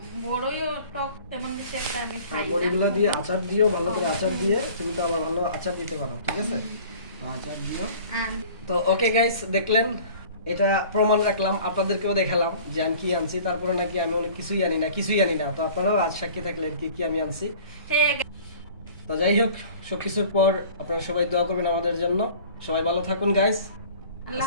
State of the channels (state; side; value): inverted; both; correlation -0.47